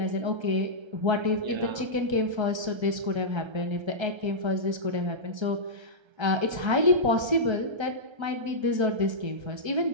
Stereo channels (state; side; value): late; left; 1.3 ms